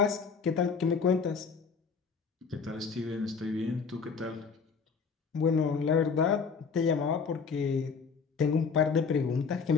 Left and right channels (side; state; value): right; quieter; 5.5 dB